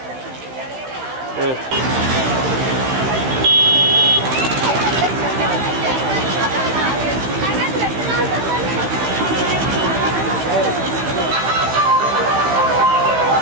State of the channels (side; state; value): left; late; 15 ms